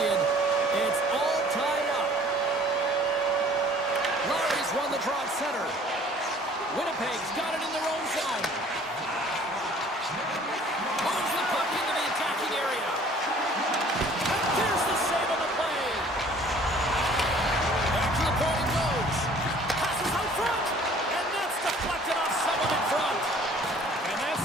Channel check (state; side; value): normal; both; correlation 0.53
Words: It's all tied up. Larry's won the draw at center. Winnipeg's got it in their own zone. Moves the puck into the attacking area. And there's the save on the play. Back to the point it goes. Passes out front. And that's deflected off someone in front. And that